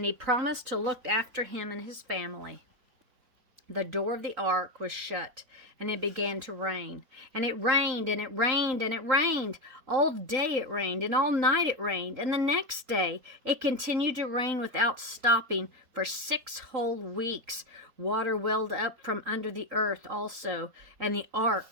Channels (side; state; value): left; late; 3.8 ms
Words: he promised to look after him and his family. The door of the ark was shut, and it began to rain. And it rained, and it rained, and it rained. All day it rained, and all night it rained. And the next day it continued to rain without stopping for 6 whole weeks. Water welled up from under the earth also, and the